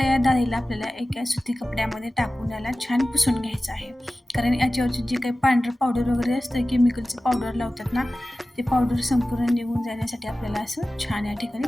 या डाळीला आपल्याला एका सुती कपड्यामध्ये टाकून याला छान पुसून घ्यायचं आहे. कारण याच्यावरची जी काही पांढरं पावडर वगैरे असतं, केमिकलचं पावडर लावतात ना, ते पावडर संपूर्ण निघून जाण्यासाठी आपल्याला असं छान या ठिकाणी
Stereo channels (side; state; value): both; normal; correlation 0.96